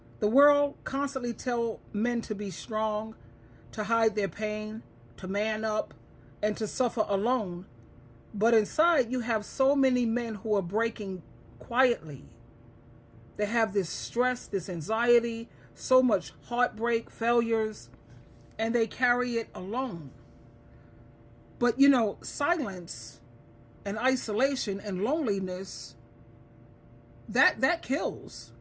the world constantly tell men to be strong, to hide their pain, to man up, and to suffer alone. But inside, you have so many men who are breaking quietly. They have this stress, this anxiety, so much heartbreak, failures, and they carry it alone. But you know, silence and isolation and loneliness, that kills.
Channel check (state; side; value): identical; both; correlation 1.00